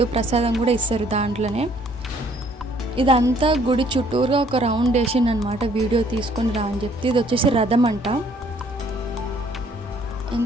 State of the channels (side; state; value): both; normal; correlation 0.62